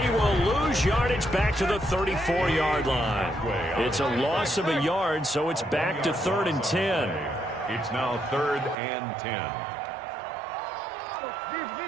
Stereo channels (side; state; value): left; drops out; at 8.8 s